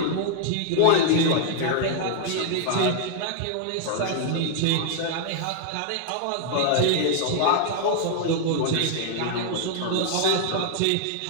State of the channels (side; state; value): both; different; correlation -0.01